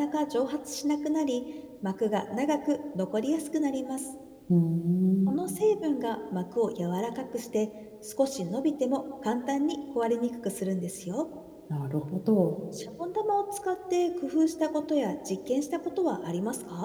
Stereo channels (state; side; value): identical; both; correlation 1.00